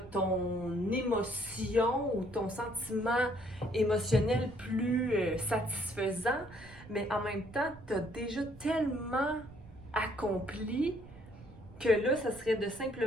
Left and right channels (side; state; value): right; noise; rumble, 19 dB below the sound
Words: ton émotion ou ton sentiment émotionnel plus satisfaisant, mais en même temps, tu as déjà tellement accompli que là, ça serait de